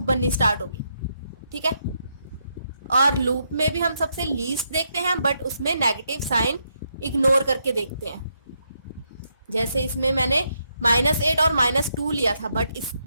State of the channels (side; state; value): both; inverted; correlation -0.78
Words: बननी स्टार्ट होगी, ठीक है। और लूप में भी हम सबसे लीस्ट देखते हैं, बट उसमें नेगेटिव साइन इग्नोर करके देखते हैं। जैसे इसमें मैंने -8 और -2 लिया था, बट